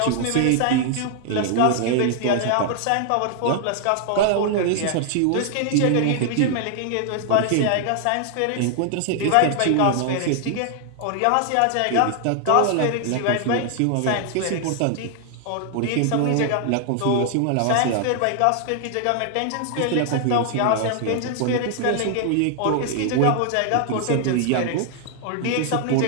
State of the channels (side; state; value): both; different; correlation 0.00